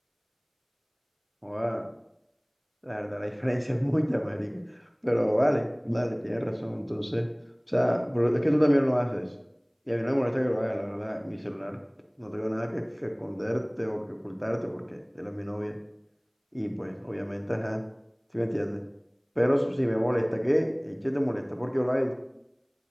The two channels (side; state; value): both; identical; correlation 1.00